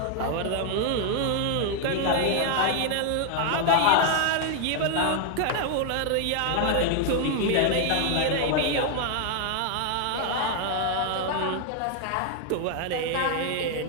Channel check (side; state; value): both; different; correlation 0.00